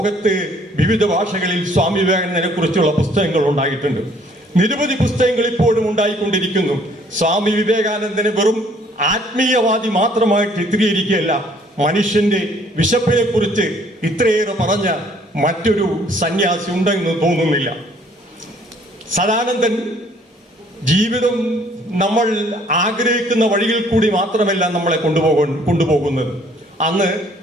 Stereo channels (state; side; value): normal; both; correlation 0.60